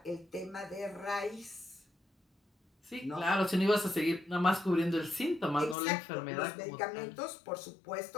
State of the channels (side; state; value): right; drops out; at 5.8 s